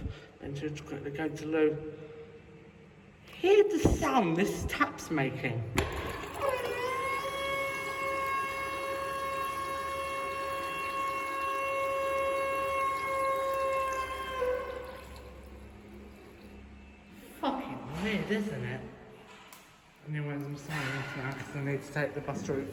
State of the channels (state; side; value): identical; both; correlation 1.00